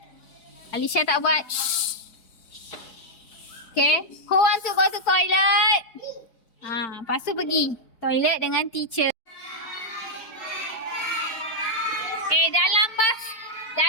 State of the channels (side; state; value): right; late; 4.5 ms